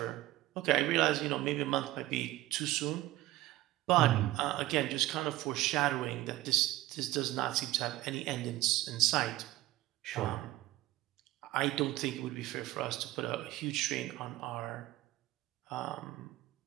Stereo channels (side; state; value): left; quieter; 16.5 dB